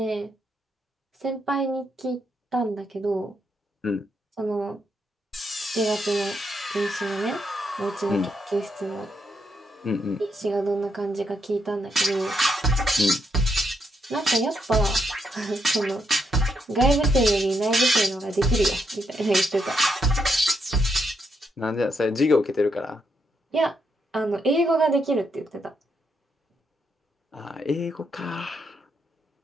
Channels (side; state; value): both; normal; correlation 0.79